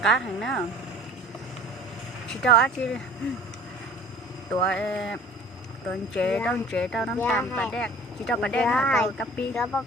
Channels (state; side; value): normal; both; correlation 0.47